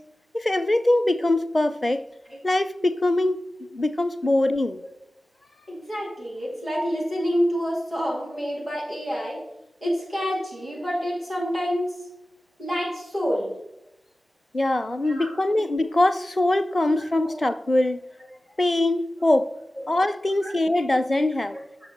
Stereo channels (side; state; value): both; normal; correlation 0.95